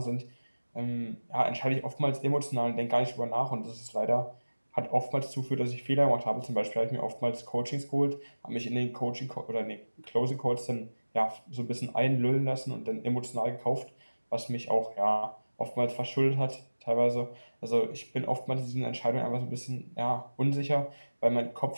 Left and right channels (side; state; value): both; inverted; correlation -1.00